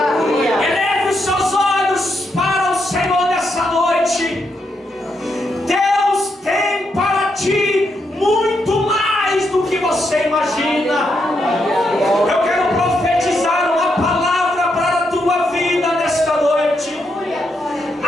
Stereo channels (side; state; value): both; normal; correlation 0.80